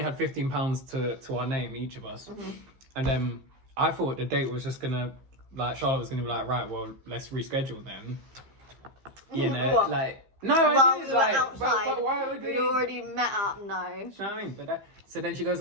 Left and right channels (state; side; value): late; left; 15 ms